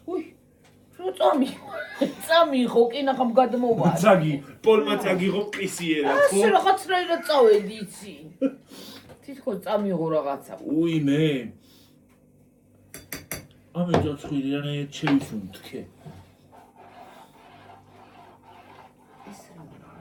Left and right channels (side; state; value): both; identical; correlation 1.00